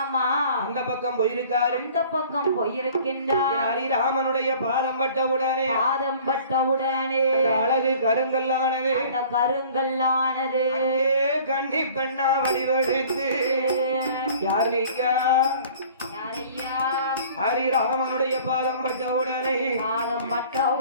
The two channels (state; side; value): inverted; both; correlation -0.49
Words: அந்த பக்கம் போயிருக்கின்றார் ஹரிராமனுடைய பாதம் பட்டவுடனே அழகு கருங்கல்லானது கண்ணி பெண்ணா வடிவெடுத்து யார் நீக்கா ஹரிராமனுடைய பாதம் பட்டவுடனே